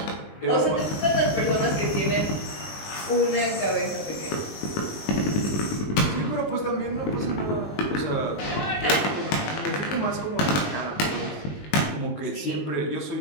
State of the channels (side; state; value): right; late; 20 ms